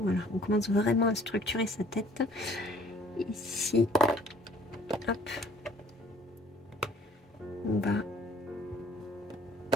on commence vraiment à structurer sa tête. Ici, hop, on va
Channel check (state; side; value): normal; both; correlation 0.56